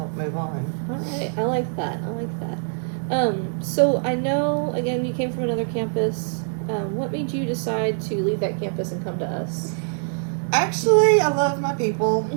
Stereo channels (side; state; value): left; silent; digital silence